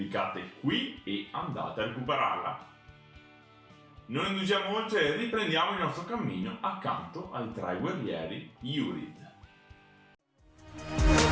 qui e andate a recuperarla. Non indugiamo oltre e riprendiamo il nostro cammino accanto ai tre guerrieri Yurid.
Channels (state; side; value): identical; both; correlation 1.00